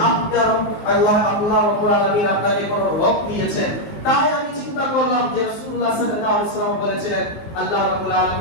আপনার আল্লাহ রাব্বুল আলামিন আপনাকে কোনো রোগ দিয়েছেন। তাই আমি চিন্তা করলাম যে রাসূলুল্লাহ সাল্লাল্লাহু আলাইহি ওয়াসাল্লাম বলেছিলেন, আল্লাহ রাব্বুল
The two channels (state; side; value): late; right; 19 ms